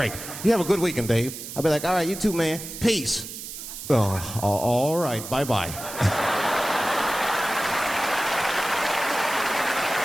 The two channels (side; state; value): right; noise; hiss, 10 dB below the sound